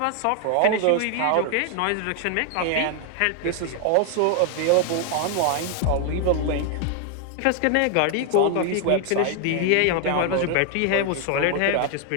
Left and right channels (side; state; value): both; different; correlation 0.00